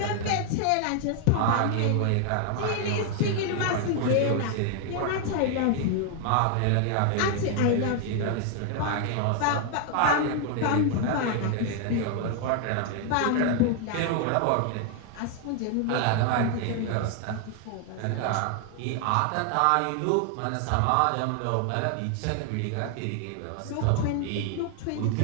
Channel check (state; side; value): different; both; correlation 0.00